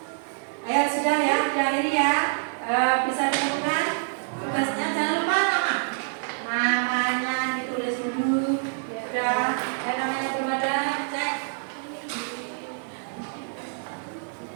Ayo sudah ya, diakhiri ya. Bisa ditemukan tugasnya, jangan lupa namanya ditulis dulu. Sudah, namanya belum ada, cek.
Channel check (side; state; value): left; silent; 61 dB below the other